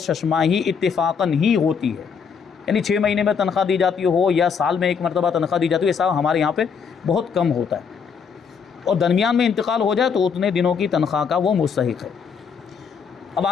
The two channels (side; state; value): right; quieter; 6.3 dB